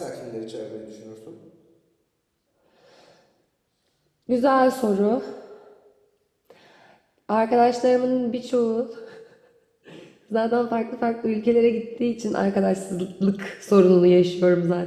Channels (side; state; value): both; identical; correlation 1.00